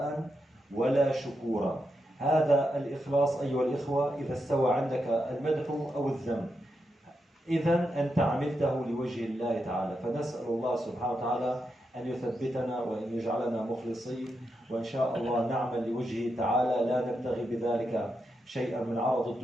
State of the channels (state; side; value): normal; both; correlation 0.85